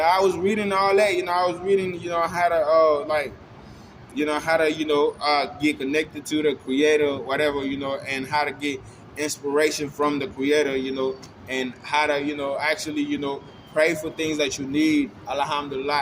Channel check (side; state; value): both; identical; correlation 1.00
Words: was reading all that, I was reading, how to how to, get connected to the creator, whatever, and how to get inspiration from the creator, and how to, actually, pray for things that you need.